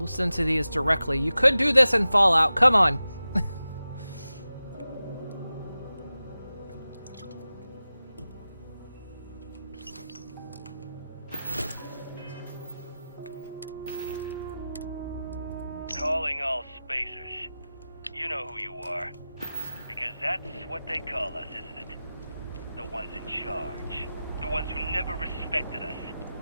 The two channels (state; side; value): inverted; both; correlation -0.94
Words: to these directly. You could do this in Fallout. Come on. Calling all spacers. You know who you are. Because that's what they call us, isn't it? The ones in charge. The ones who never respected us.